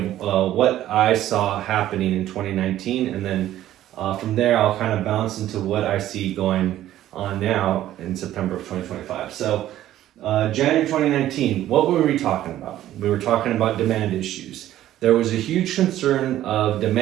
of what I saw happening in 2019, and then from there, I'll kind of bounce into what I see going on now in September of 2025. So, January 2019, what were we talking about? We were talking about demand issues. There was a huge concern of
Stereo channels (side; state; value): left; quieter; 13.1 dB